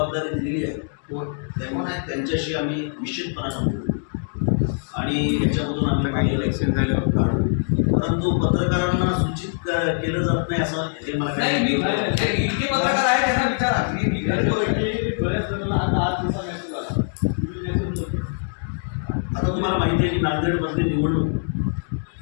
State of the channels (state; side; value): silent; right; digital silence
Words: दिलेली आहे त्यांच्याशी आम्ही निश्चितपणानं बोलू आणि याच्यामधून आम्ही इलेक्शन झाल्यावर काढू. परंतु पत्रकारांना सूचित केलं जात नाही असं हे मला नाही. इतके पत्रकार आहेत त्यांना विचारा. आता तुम्हाला माहिती आहे की नांदेडमधली निवडणूक